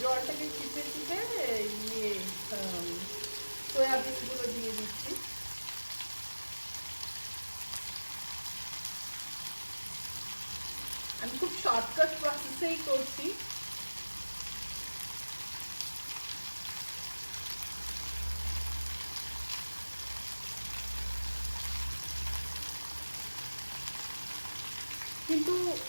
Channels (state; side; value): inverted; both; correlation -1.00